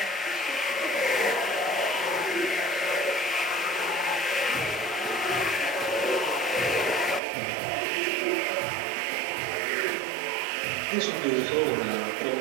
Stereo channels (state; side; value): drops out; left; at 7.2 s